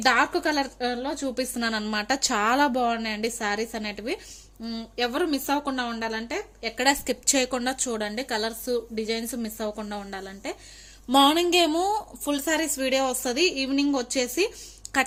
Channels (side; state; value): both; identical; correlation 1.00